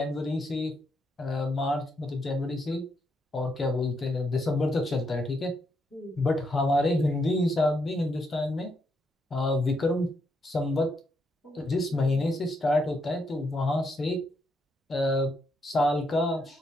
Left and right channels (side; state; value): both; normal; correlation 0.78